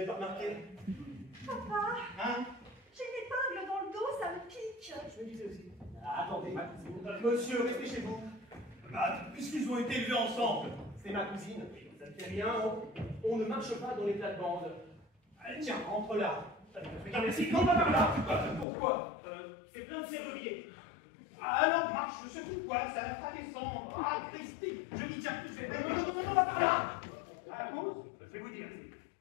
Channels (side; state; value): right; drops out; at 18.7 s